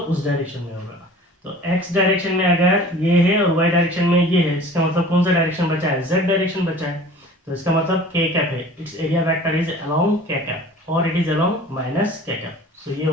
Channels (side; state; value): both; normal; correlation 0.44